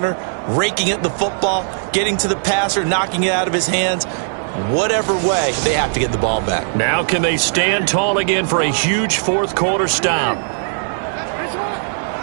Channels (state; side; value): silent; left; 67 dB below the other